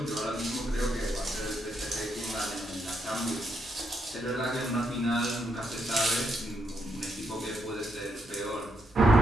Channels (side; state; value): both; normal; correlation 0.79